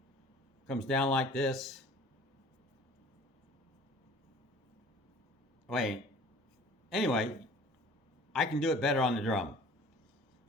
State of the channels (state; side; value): normal; both; correlation 0.48